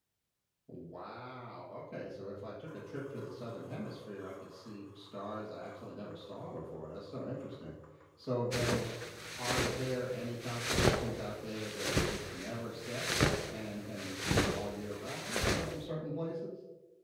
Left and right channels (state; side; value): identical; both; correlation 1.00